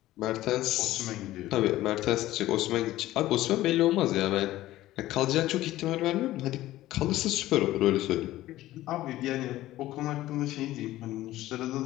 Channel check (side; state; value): right; quieter; 15.5 dB